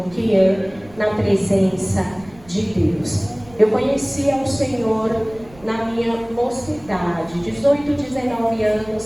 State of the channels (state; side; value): noise; right; rumble, 23 dB below the sound